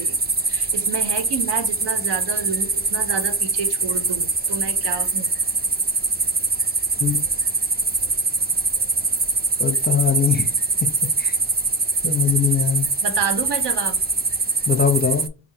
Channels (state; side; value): normal; both; correlation 0.19